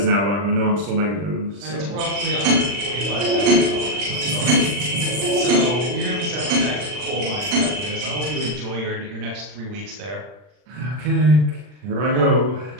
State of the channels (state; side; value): late; left; 40 ms